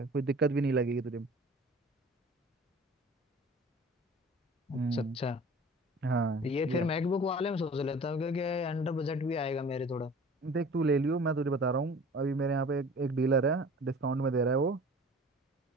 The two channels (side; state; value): both; normal; correlation 0.44